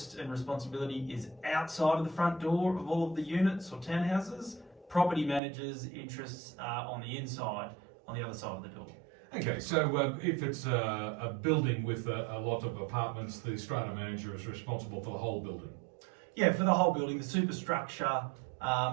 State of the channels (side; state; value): left; drops out; at 5.4 s